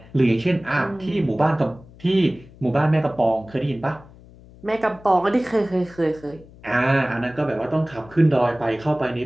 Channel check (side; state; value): left; noise; hum, 22 dB below the sound